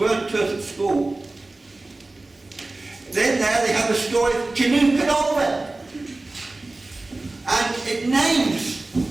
weren't taught at school. Then there they have the story of Canute and Olwen. And it names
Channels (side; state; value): left; quieter; 3.0 dB